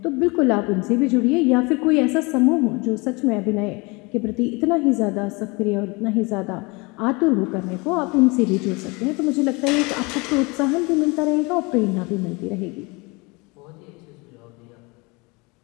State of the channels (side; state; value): right; quieter; 27.1 dB